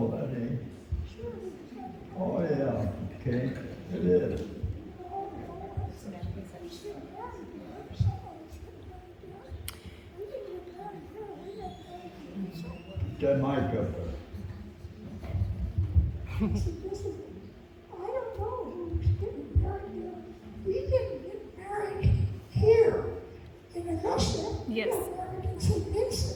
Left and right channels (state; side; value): identical; both; correlation 1.00